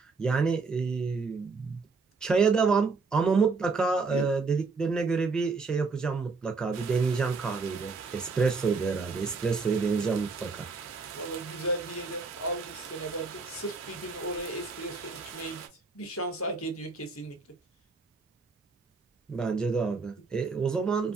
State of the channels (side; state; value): left; quieter; 4.3 dB